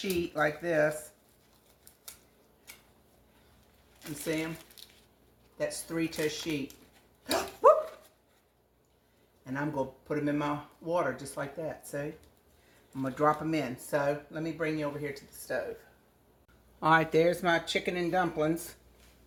like this. You see them? That's 3 to a sheet. Whoop! And I'm going to put them in my water just like that. See? I'm going to drop them in. So let me bring you over here to the stove. All right, there's my chicken and dumplings.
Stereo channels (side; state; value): both; identical; correlation 1.00